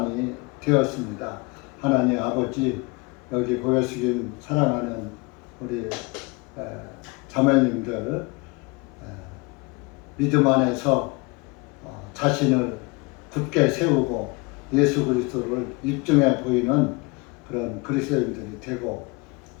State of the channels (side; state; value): right; quieter; 26.9 dB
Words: 되었습니다. 하나님 아버지, 여기 고개 숙인 사랑하는 우리 자매님들 믿음 안에서 자신을 굳게 세우고 예수 그리스도를 입증해 보이는 그런 그리스도인들이 되고,